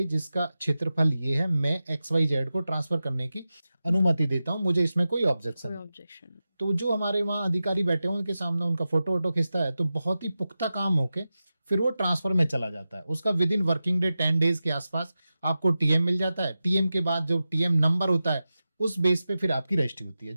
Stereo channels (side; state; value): both; inverted; correlation -0.93